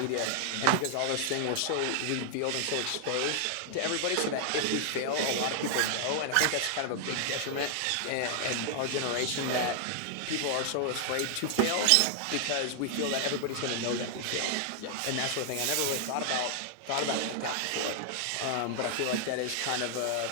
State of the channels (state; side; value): different; both; correlation 0.00